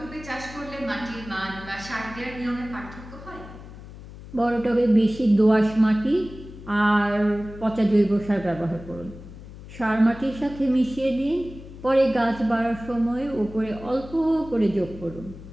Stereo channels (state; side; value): noise; left; hum, 15 dB below the sound